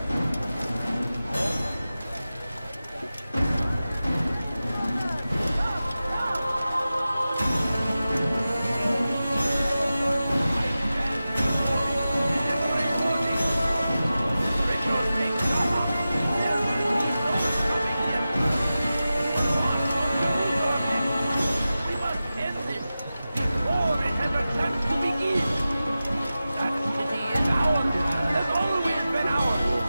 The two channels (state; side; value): inverted; both; correlation -0.94